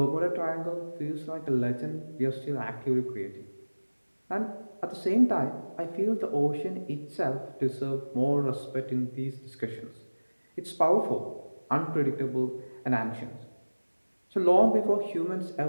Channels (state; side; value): inverted; both; correlation -1.00